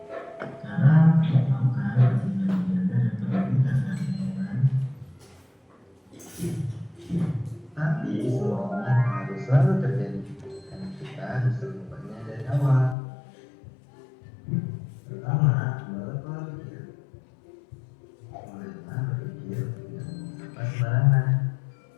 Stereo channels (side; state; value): right; drops out; at 13.0 s